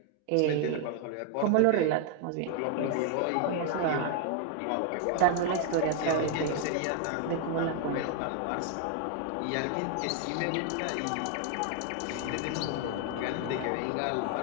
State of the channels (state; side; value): different; both; correlation 0.00